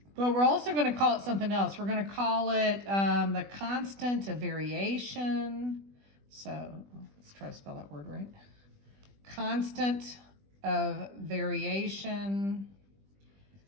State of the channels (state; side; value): late; left; 20 ms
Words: But we're also going to call it something else. We're going to call it the constant of variation. So let's try to spell that word right. Constant of variation.